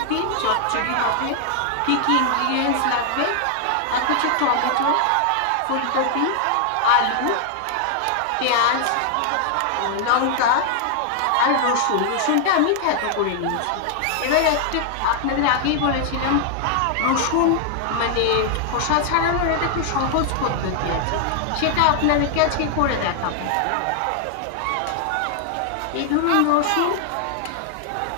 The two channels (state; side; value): different; both; correlation 0.00